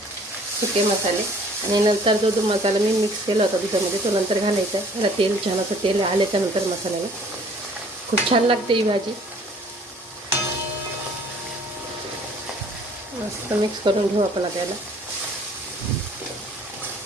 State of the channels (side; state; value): both; normal; correlation 0.55